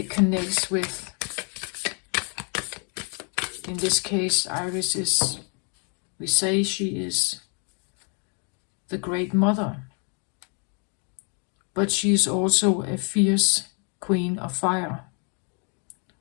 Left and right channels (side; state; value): right; quieter; 39.1 dB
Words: connects with, in this case, Iris is, we say she is the Great Mother, but she is also a fierce queen of fire.